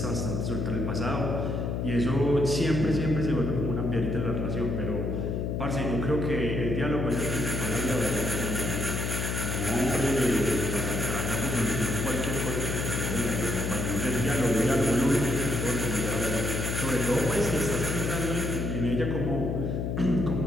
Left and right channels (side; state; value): left; noise; hum, 1 dB below the sound